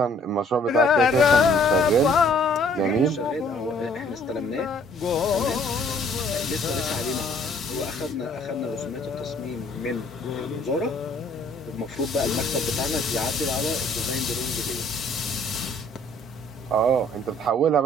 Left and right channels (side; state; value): both; normal; correlation 0.59